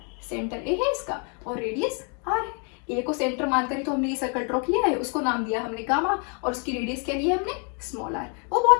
Centre a है इसका और रेडियस r है. ए को सेंटर मानकर ही तो हमने ये सर्कल ड्रॉ किया है. उसको नाम दिया हमने गामा और उसकी रेडियस क्या ली है हमने? Small r. वो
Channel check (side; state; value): right; quieter; 38.3 dB